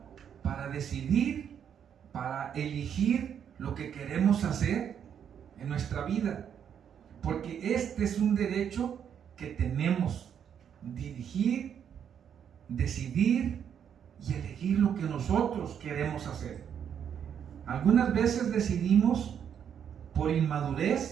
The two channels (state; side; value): quieter; left; 8.4 dB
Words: para decidir, para elegir lo que queremos hacer en nuestra vida, porque este es un derecho que tenemos: dirigir, decidir y elegir lo que nosotros queremos hacer. Algunas veces decidimos por